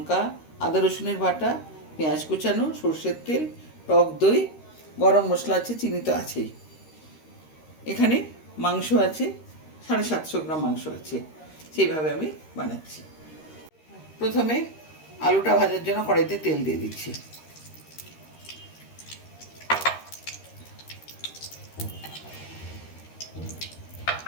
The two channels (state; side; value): late; right; 13 ms